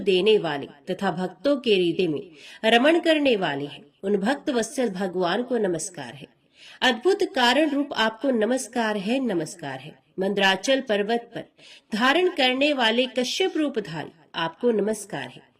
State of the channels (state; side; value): identical; both; correlation 1.00